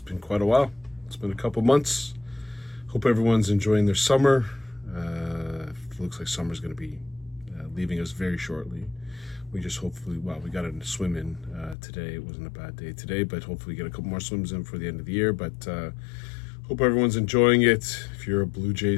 quite a while. It's been a couple months. Hope everyone's enjoying their summer. It looks like summer's going to be leaving us very shortly. We just hopefully, we got a swim in today. It wasn't a bad day today, but hopefully get a couple more swims in for the end of the year. But hope everyone's enjoying it. If you're a Blue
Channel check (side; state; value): right; drops out; at 11.8 s